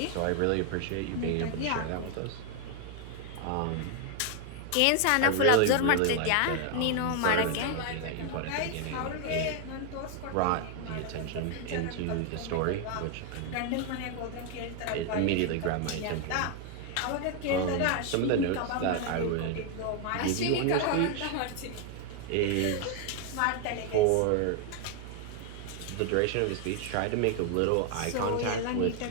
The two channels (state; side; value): different; both; correlation 0.01